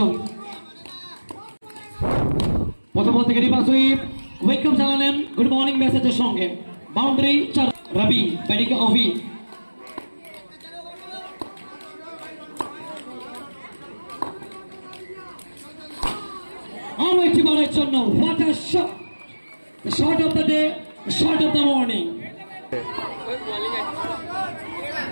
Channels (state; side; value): inverted; both; correlation -1.00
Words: প্রথম বল থেকে রিভার্স সুইপ, ওয়েলকাম জানালেন গুড মর্নিং মেসেজের সঙ্গে। বাউন্ডারি 4 রাবি, ব্যাটিংয়ে অভি। আরো একটি বলের জন্য what a shot, the shot of the day, the shot of the morning.